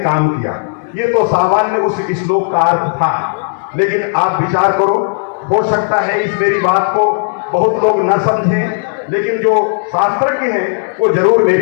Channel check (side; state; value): right; silent; digital silence